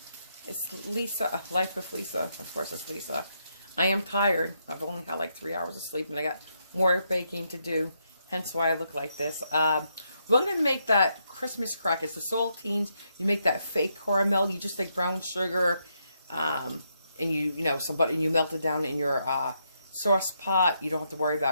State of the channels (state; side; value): inverted; both; correlation -0.79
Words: It's Lisa, Life with Lisa. Of course it's Lisa. I am tired. I've only had like 3 hours of sleep and I got more baking to do. Hence why I look like this. We're going to make that Christmas crack. It's the saltines. You make that fake caramel. You just take brown sugar and you know, some butter, and you melt it down in your sauce pot. You don't have to worry